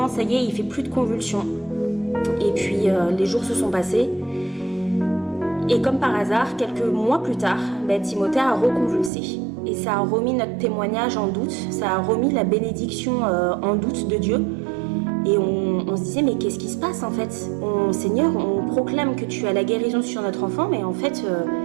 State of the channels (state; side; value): drops out; left; at 9.1 s